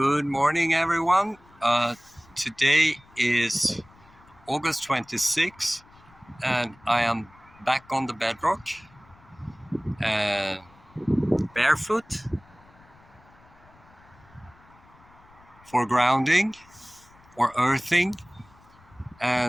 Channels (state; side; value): noise; left; rumble, 27 dB below the sound